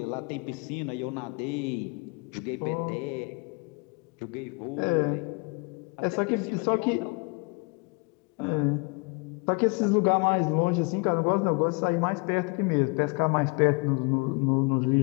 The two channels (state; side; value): quieter; right; 31.4 dB